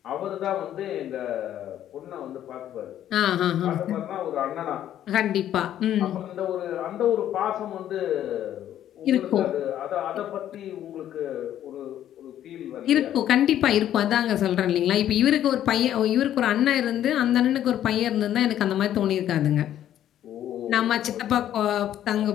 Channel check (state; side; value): quieter; right; 11.4 dB